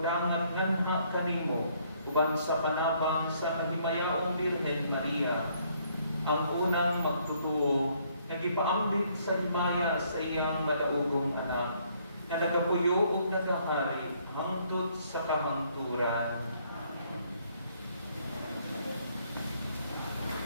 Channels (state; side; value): inverted; both; correlation -0.67